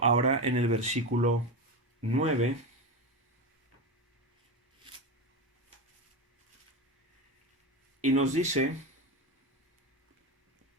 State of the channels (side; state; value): both; normal; correlation 0.18